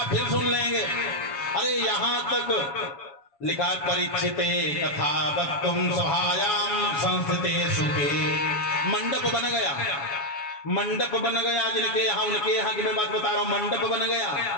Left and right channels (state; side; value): late; right; 7.2 ms